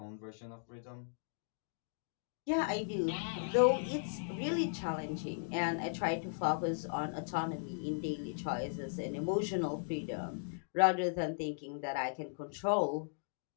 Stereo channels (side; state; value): right; silent; digital silence